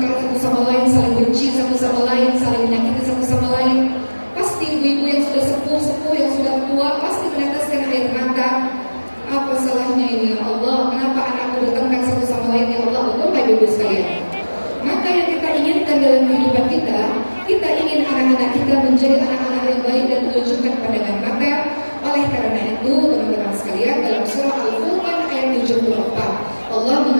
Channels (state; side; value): inverted; both; correlation -1.00